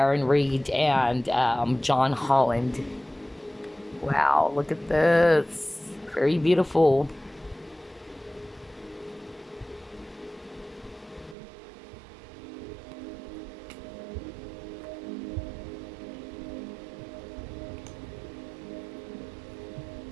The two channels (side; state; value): left; drops out; at 11.4 s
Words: Reed and John Holland. Wow, look at this. Very beautiful.